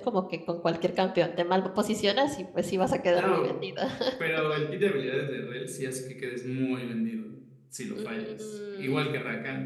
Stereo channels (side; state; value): both; identical; correlation 1.00